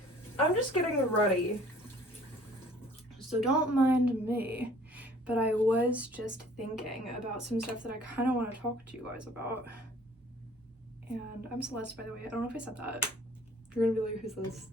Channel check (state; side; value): normal; both; correlation 0.54